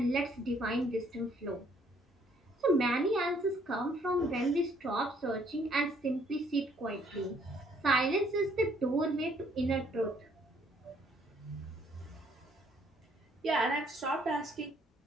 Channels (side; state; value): both; normal; correlation 0.64